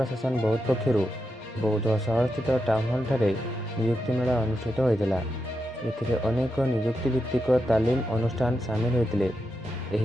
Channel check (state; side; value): normal; both; correlation 0.86